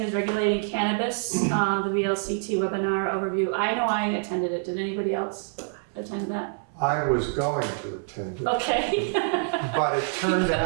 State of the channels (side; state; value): left; silent; 61 dB below the other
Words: regulating cannabis, the VLCT webinar overview. I know I attended it. Did anybody else attend that? I was going to attend it, Okay. but it turned